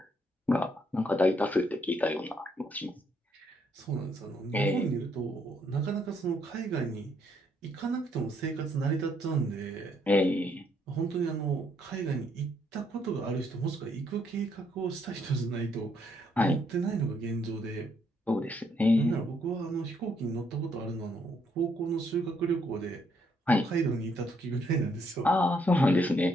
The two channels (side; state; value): both; normal; correlation 0.72